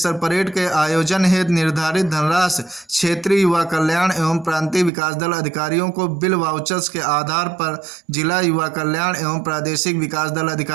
परेड के आयोजन हेतु निर्धारित धनराशि क्षेत्रीय युवा कल्याण एवं प्रांतीय विकास दल अधिकारियों को बिल वाउचर्स के आधार पर जिला युवा कल्याण एवं प्रादेशिक विकास दल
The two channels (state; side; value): drops out; left; at 4.9 s